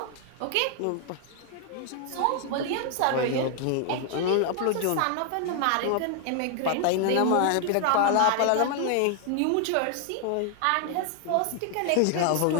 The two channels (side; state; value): both; different; correlation 0.00